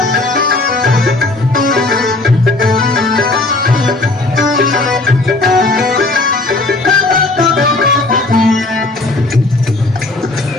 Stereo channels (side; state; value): right; quieter; 3.0 dB